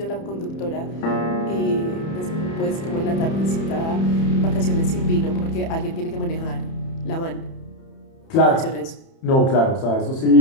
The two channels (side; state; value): right; late; 30 ms